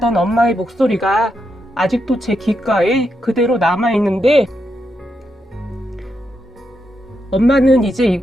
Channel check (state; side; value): normal; both; correlation 0.83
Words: 엄마의 목소리가 아직도 제 귓가에 그대로 남아있는데 엄마는 이제